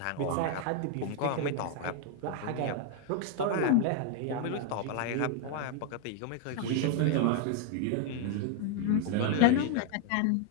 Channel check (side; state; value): both; different; correlation 0.00